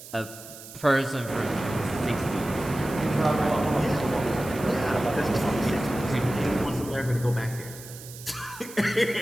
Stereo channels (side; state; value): right; noise; hiss, 15 dB below the sound